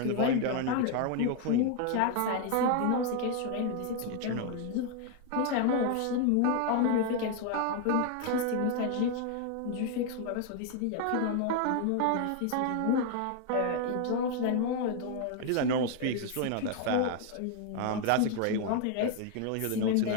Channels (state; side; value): different; both; correlation 0.00